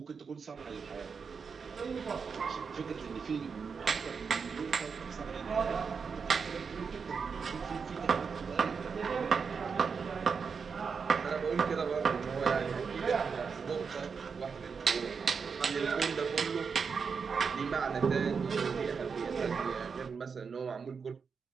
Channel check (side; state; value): left; quieter; 5.7 dB